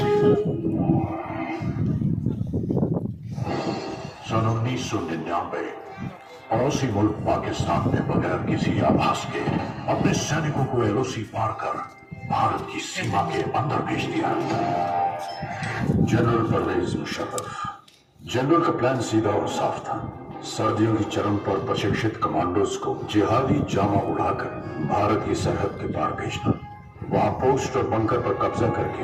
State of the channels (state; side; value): identical; both; correlation 1.00